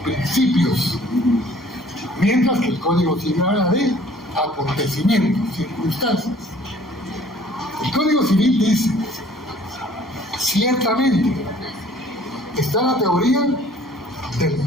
principios, mientras que el código civil habla de acontecimientos, circunstancias. El Código Civil dice, ciertamente, está la teoría del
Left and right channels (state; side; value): normal; both; correlation 0.55